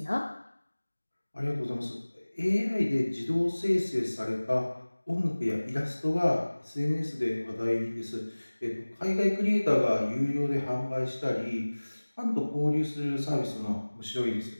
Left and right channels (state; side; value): inverted; both; correlation -1.00